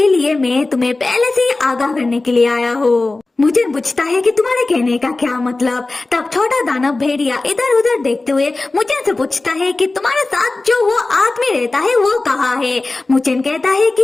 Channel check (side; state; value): right; quieter; 3.2 dB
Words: लिए मैं तुम्हें पहले से ही आगाह करने के लिए आया हूँ। मुचैन पूछता है कि तुम्हारे कहने का क्या मतलब। तब छोटा दानव भेड़िया इधर उधर देखते हुए मुचैन से पूछता है कि तुम्हारे साथ जो वो आदमी रहता है वो कहाँ है। मुचैन कहता है